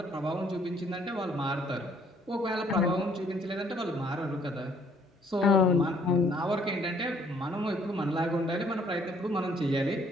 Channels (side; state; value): both; normal; correlation 0.63